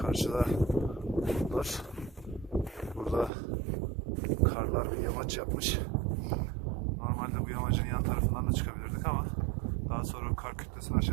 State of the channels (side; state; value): left; drops out; at 3.3 s